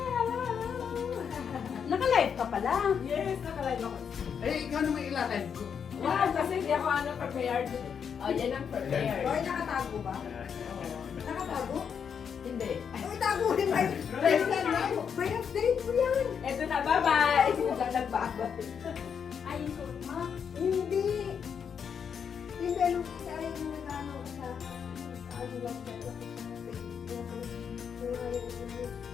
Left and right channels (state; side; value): quieter; right; 7.2 dB